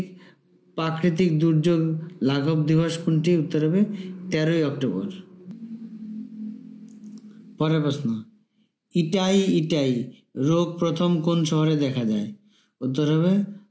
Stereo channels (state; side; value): identical; both; correlation 1.00